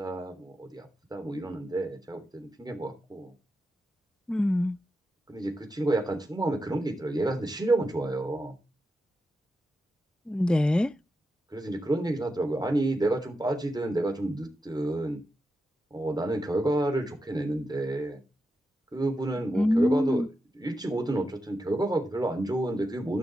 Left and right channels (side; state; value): both; normal; correlation 0.88